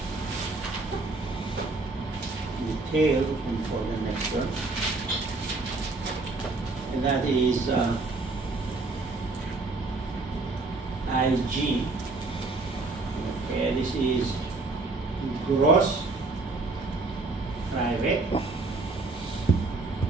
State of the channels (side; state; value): left; quieter; 3.4 dB